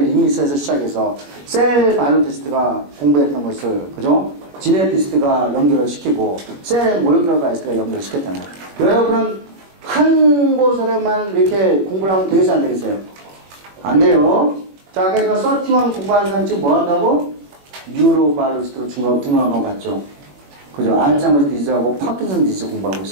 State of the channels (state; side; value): late; left; 21 ms